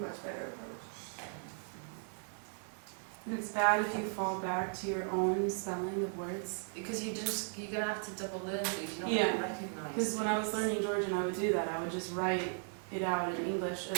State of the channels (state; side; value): silent; left; 53 dB below the other